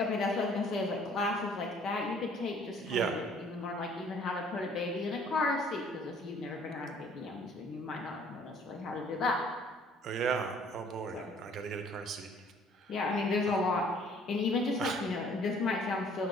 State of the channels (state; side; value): normal; both; correlation 0.57